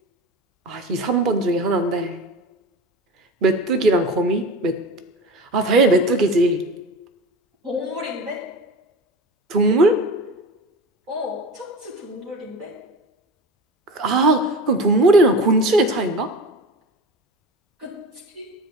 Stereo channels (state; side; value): normal; both; correlation 0.32